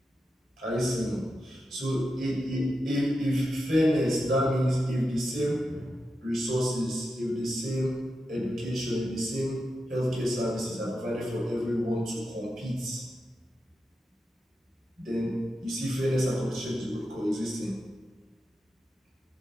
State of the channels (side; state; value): both; normal; correlation 0.89